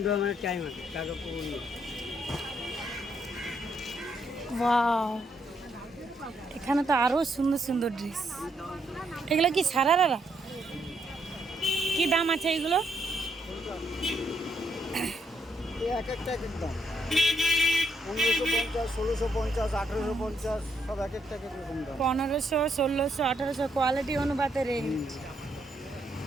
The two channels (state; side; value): normal; both; correlation 0.75